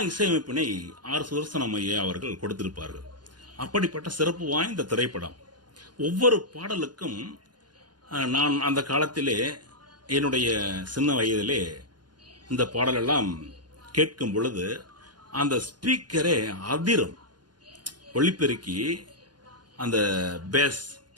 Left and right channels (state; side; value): late; left; 0.70 ms